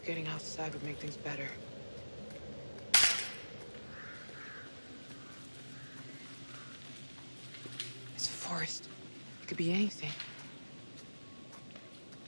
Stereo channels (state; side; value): inverted; both; correlation -1.00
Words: getting outside would make things better. It's a forest. It could be anything.